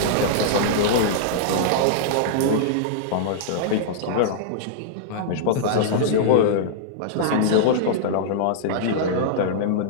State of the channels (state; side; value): different; both; correlation -0.02